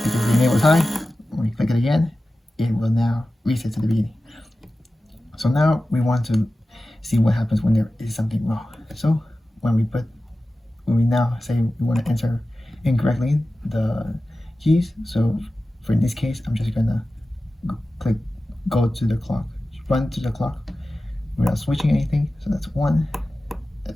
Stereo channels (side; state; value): both; normal; correlation 0.95